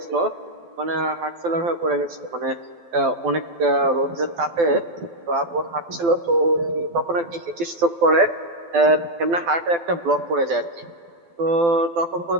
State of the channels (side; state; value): left; late; 12 ms